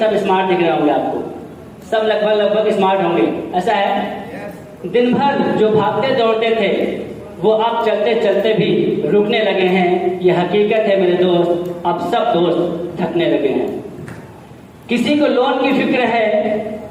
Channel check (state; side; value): identical; both; correlation 1.00